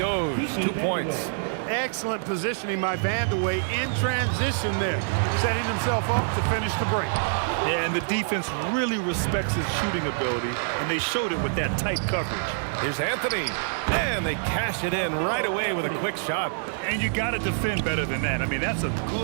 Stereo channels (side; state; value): left; silent; 61 dB below the other